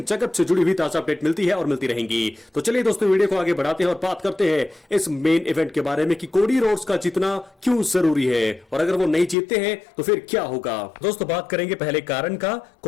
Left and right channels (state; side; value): drops out; right; at 9.3 s